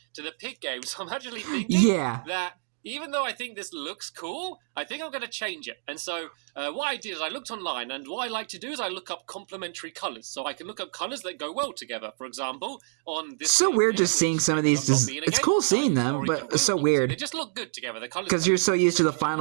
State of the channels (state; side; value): silent; left; digital silence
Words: to the pig game. So I'm actually thinking that even though I think this looks cool, I think I'm going to change it. And so what I did is I looked online, and what I like to do is I look up complementary colors. So I can look up colors that go well together. For example, on this... So weird just seeing some of these. It's cool seeing them, but it's so weird. They just look good together. Because you're so used to the